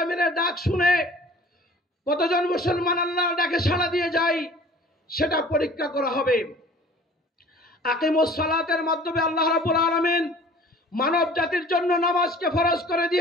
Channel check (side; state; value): both; normal; correlation 0.48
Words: ডাক শুনে কতজন মুসলমান আল্লাহর ডাকে সাড়া দিয়ে যায় সেটা পরীক্ষা করা হবে। আকিমুস সালাতের মাধ্যমে আল্লাহ রাব্বুল আলামিন মানব জাতির জন্য নামাজকে ফরজ করে